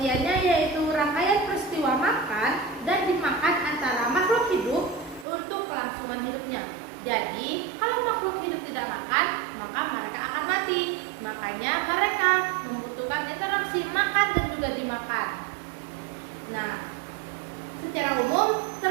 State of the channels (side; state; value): left; drops out; at 5.2 s